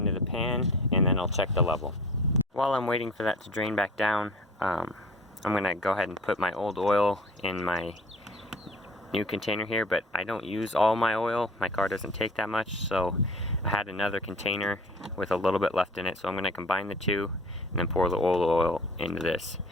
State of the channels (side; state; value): both; normal; correlation 0.44